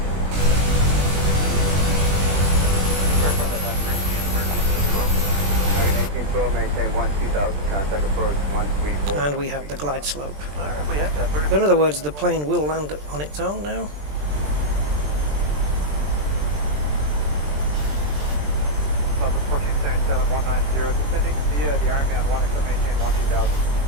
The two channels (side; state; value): left; late; 20 ms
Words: Maintain 12,000, contact approach 134. And we have the glide slope. Alright, we have that. 30. In other words, the plane will land on its own now. Southwest 1477, 190, descending via the Ironman 1, except maintain 12,000.